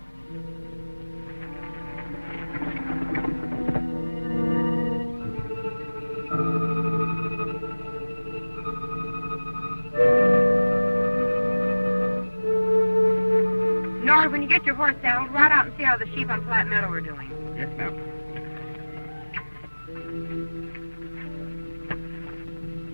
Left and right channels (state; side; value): inverted; both; correlation -1.00